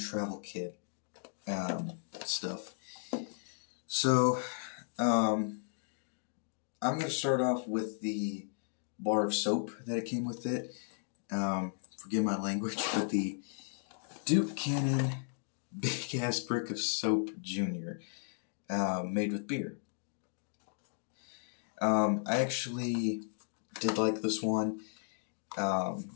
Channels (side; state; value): right; silent; digital silence